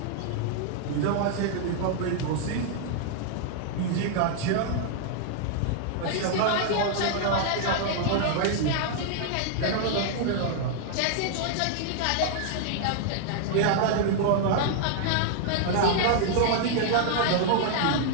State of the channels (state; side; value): different; both; correlation -0.01